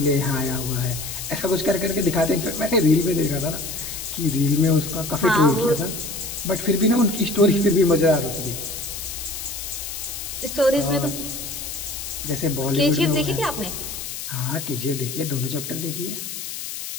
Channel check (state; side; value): noise; left; hiss, 7 dB below the sound